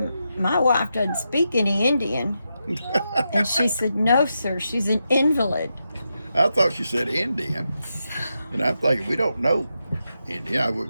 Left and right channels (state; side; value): inverted; both; correlation -0.86